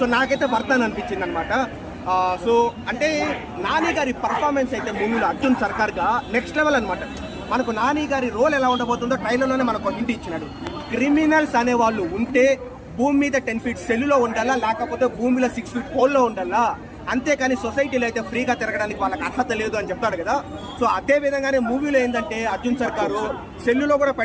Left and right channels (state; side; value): identical; both; correlation 1.00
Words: నాకైతే వర్త్ అని అనిపించింది అనమాట. సో అంటే నాని గారి పర్ఫార్మెన్స్ అయితే మూవీలో అర్జున్ సర్కార్గా నెక్స్ట్ లెవెల్ అనమాట. మనకు నాని గారి రోల్ ఎలా ఉండబోతుందో ట్రైలర్లోనే మనకు హింట్ ఇచ్చినాడు. క్రిమినల్స్ అనేవాళ్ళు ఉంటే భూమి మీద 10 feet సెల్లులో ఉండాలా, లేకపోతే భూమిలో 6 feet హోల్లో ఉండాలా, అంతేకాని సొసైటీలో అయితే ఫ్రీగా తిరగడానికి వాళ్ళకి అర్హత లేదు అని చెప్తాడు కదా. సో అదే విధంగానే మూవీలో ఏంటంటే అర్జున్ సర్కారు సెల్లులో కూడా